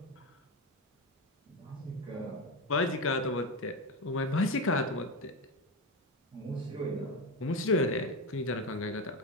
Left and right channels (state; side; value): normal; both; correlation 0.16